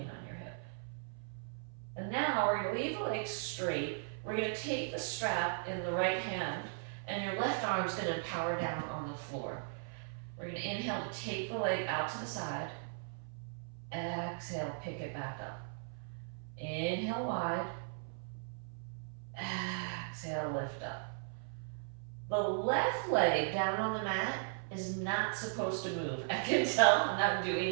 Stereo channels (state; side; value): silent; left; 53 dB below the other